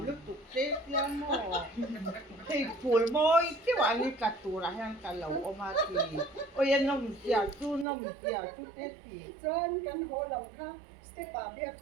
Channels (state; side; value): drops out; left; at 7.9 s